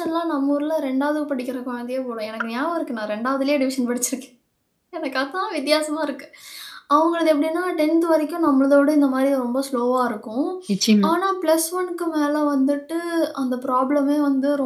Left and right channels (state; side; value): identical; both; correlation 1.00